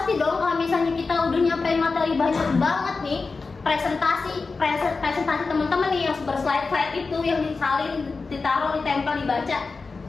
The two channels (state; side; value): quieter; right; 4.2 dB